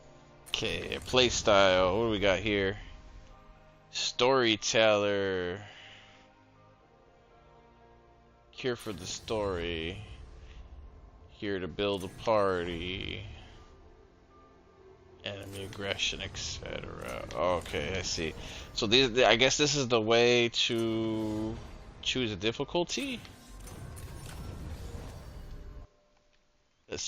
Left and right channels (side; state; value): both; identical; correlation 1.00